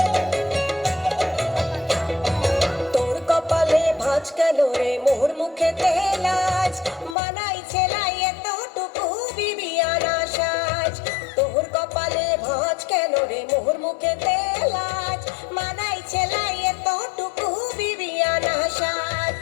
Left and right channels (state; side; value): drops out; right; at 7.2 s